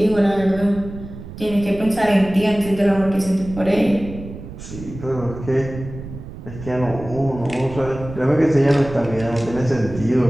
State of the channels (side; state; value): right; noise; rumble, 13 dB below the sound